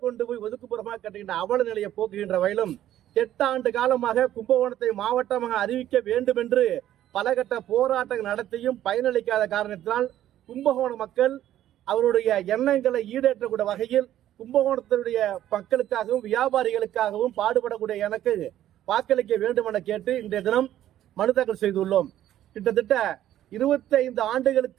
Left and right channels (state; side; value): quieter; left; 12.4 dB